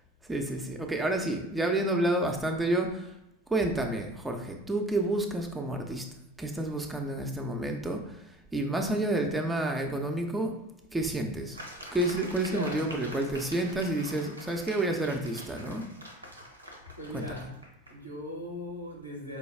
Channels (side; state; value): both; normal; correlation 0.47